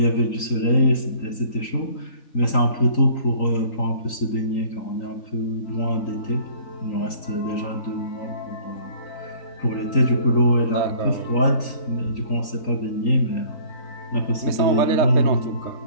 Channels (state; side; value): late; right; 3.9 ms